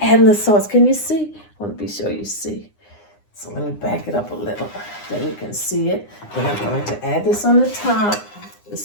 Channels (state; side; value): late; right; 9.8 ms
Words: the sauce. Can you see? I want to be sure you see. So let me back it up a little. Then you can see it. Then I'm going to add this on the top.